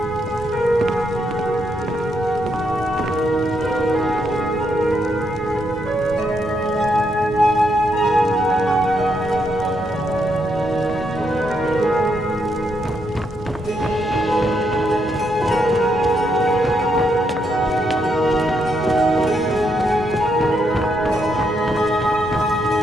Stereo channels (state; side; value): normal; both; correlation 0.78